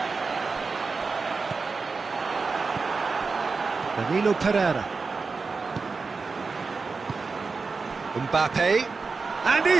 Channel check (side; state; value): left; quieter; 4.4 dB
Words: Danilo Pereira. Mbappe. And